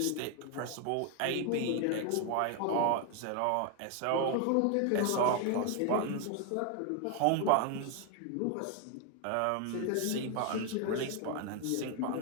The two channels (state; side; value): different; both; correlation 0.00